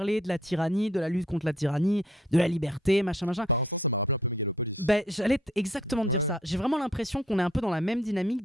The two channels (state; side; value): normal; both; correlation 0.63